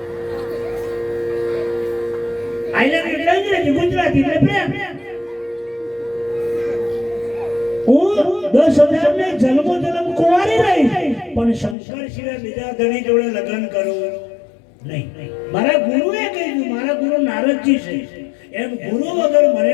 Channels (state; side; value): drops out; right; at 11.8 s